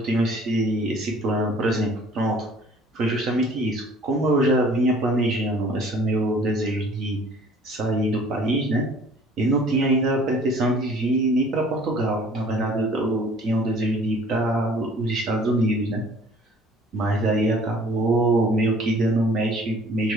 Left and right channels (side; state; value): both; normal; correlation 0.53